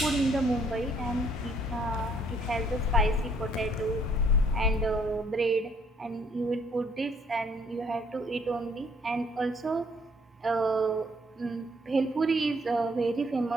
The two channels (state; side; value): normal; both; correlation 0.64